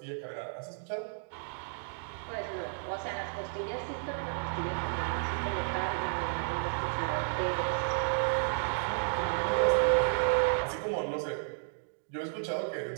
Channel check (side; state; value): left; silent; digital silence